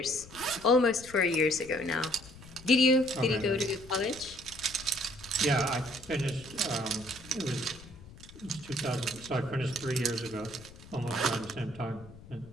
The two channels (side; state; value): left; noise; rumble, 19 dB below the sound